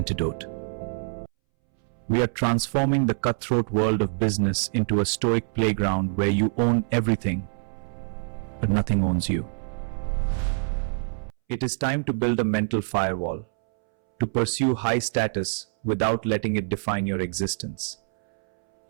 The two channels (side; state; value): left; silent; 61 dB below the other